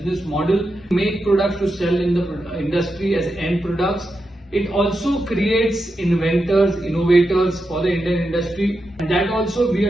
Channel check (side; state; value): both; normal; correlation 0.87